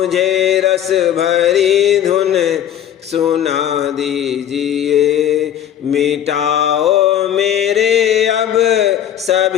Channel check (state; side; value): quieter; right; 10.3 dB